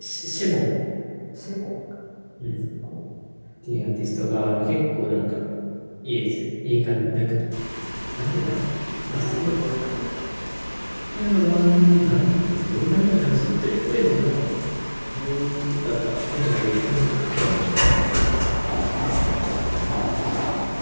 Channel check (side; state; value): both; inverted; correlation -1.00